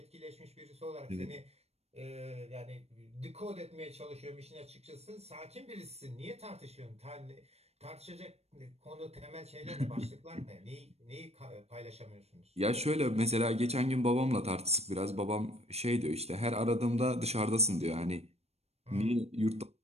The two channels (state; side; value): late; left; 0.31 ms